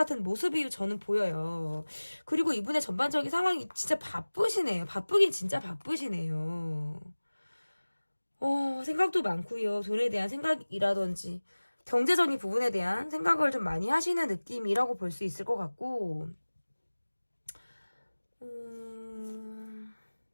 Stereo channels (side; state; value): both; inverted; correlation -1.00